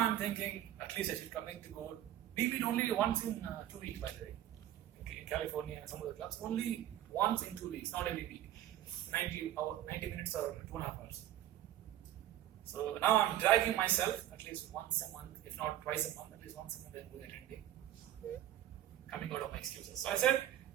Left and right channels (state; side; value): quieter; left; 12.4 dB